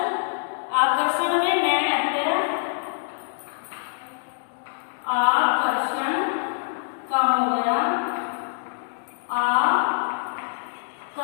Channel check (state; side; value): silent; right; digital silence